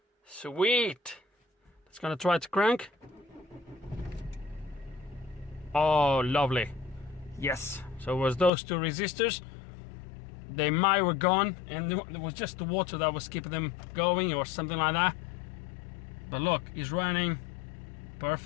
Sweet. Let's gonna try to crank. Oh, lovely. Yes. So it was those two resistors. They might were gone, and it was just the water that was keeping them going or something like that. But look, it's running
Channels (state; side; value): drops out; right; at 8.5 s